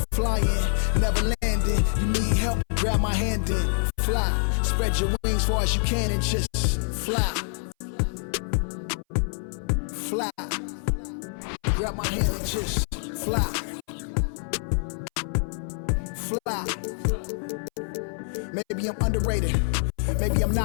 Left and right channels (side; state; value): right; silent; 58 dB below the other